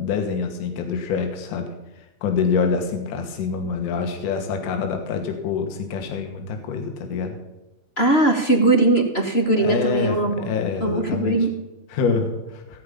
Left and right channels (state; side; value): late; right; 3.0 ms